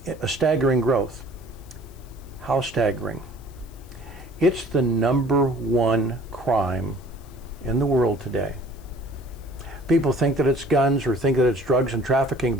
a staggering growth. How staggering? It's the #1 crime in the world today. People think that it's guns or think that it's drugs and trafficking,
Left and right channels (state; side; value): noise; left; hiss, 27 dB below the sound